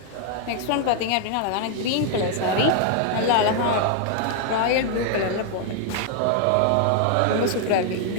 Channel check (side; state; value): both; different; correlation 0.00